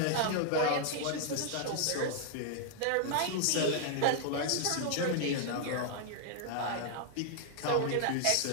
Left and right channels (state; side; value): different; both; correlation 0.00